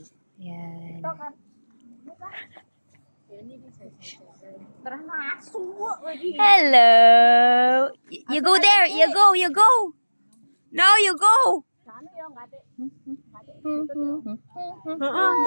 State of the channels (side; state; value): both; inverted; correlation -1.00